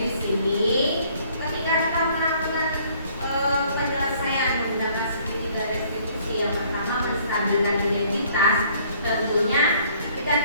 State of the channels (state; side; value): inverted; both; correlation -0.60